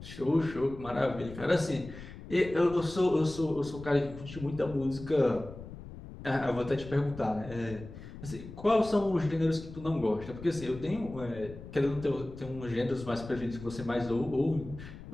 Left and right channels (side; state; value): left; noise; rumble, 14 dB below the sound